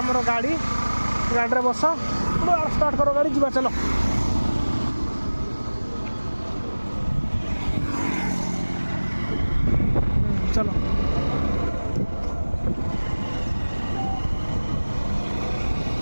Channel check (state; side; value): inverted; both; correlation -1.00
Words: गाड़ी गाड़ी बस स्टार्ट करो गाड़ी जा चलो। चलो